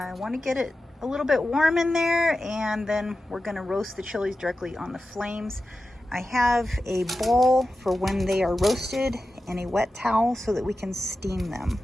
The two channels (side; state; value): both; normal; correlation 0.93